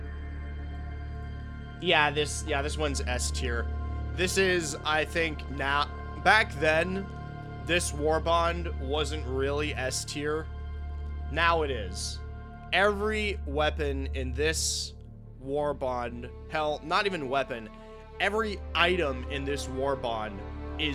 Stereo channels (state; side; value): identical; both; correlation 1.00